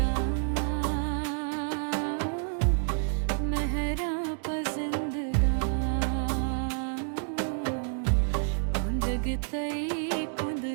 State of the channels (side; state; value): left; silent; 59 dB below the other